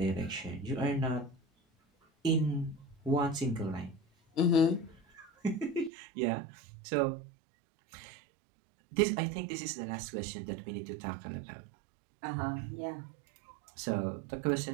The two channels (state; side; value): drops out; left; at 5.9 s